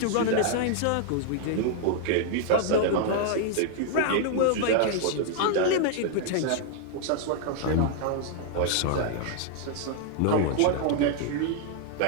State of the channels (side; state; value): both; different; correlation 0.00